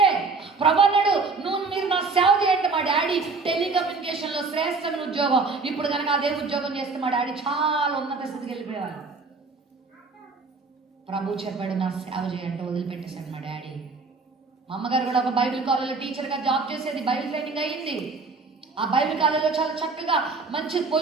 ప్రభు అన్నాడు, మీరు నా సేవ చేయండి. మా డాడీ టెలికమ్యూనికేషన్లో శ్రేష్టమైన ఉద్యోగం. ఇప్పుడు కనుక అదే ఉద్యోగం చేస్తే మా డాడీ చాలా ఉన్నత స్థితికి వెళ్ళిపోయేవారు. ప్రభు చెప్పాడు నా సేవ చేయంటే వదిలిపెట్టేశాడు మా డాడీ. మా అమ్మగారు కూడా ఒక బైబిల్ కాలేజ్లో టీచర్గా జాబ్ చేసేది, బైబిల్ ట్రైనింగ్ అయ్యింది. ఆ బైబిల్ కాలేజ్లో చాలా చక్కగా మంచి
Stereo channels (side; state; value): left; quieter; 4.2 dB